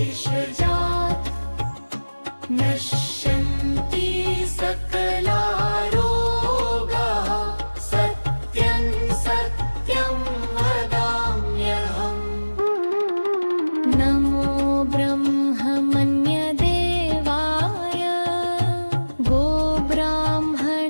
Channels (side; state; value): both; inverted; correlation -1.00